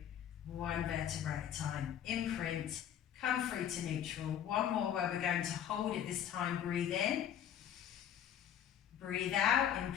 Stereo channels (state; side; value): quieter; right; 9.8 dB